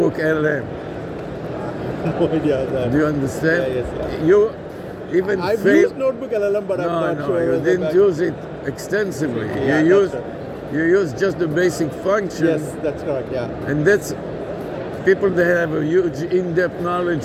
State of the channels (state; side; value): identical; both; correlation 1.00